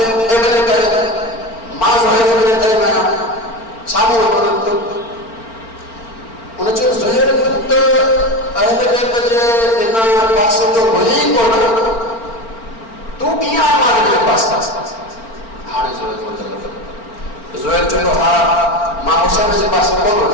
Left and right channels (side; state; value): right; late; 4.4 ms